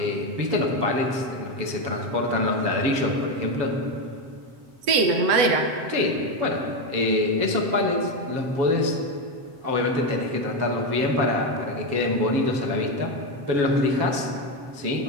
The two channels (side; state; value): left; late; 7.7 ms